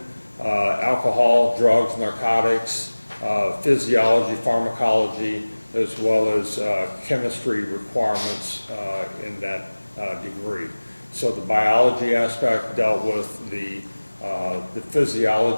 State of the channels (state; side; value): inverted; both; correlation -1.00